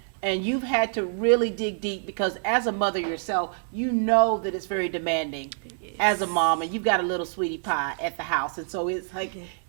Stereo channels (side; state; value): left; silent; digital silence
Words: And you've had to really dig deep because as a mother yourself, you know that it's very demanding as a mom, and you've got a little sweetie pie at the house. And so it's like